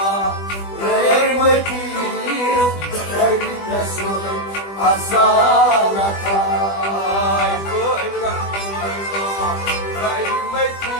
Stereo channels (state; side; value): late; right; 20 ms